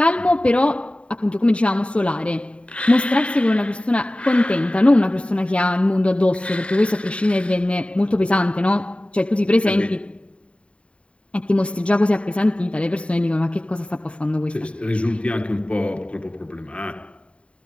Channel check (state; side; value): late; right; 0.060 ms